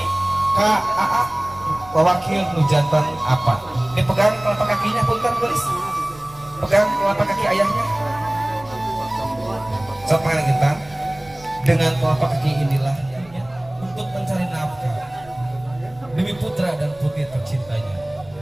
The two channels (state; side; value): noise; right; rumble, 23 dB below the sound